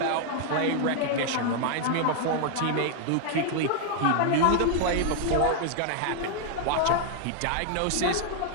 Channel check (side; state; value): both; different; correlation -0.01